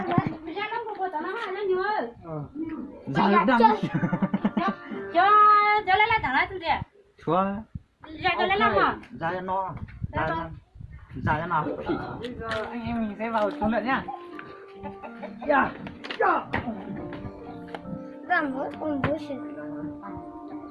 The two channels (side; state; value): both; identical; correlation 1.00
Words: Ra đang. Cho lấy lại thẳng lại tôi đi. Chúa. Ra cho lấy lại mà. Ra cho nó. Ra cho nào. Bây giờ anh em mình sẽ vào xuống lượn nhá.